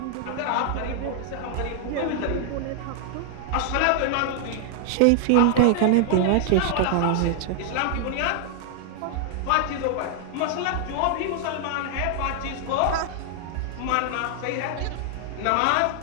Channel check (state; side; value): different; both; correlation 0.00